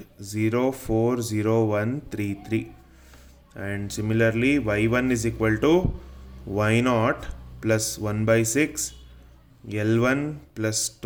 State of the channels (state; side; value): identical; both; correlation 1.00